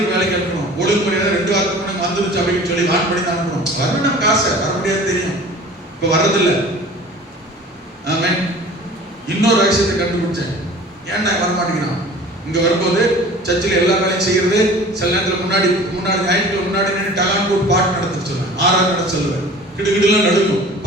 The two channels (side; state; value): both; normal; correlation 0.44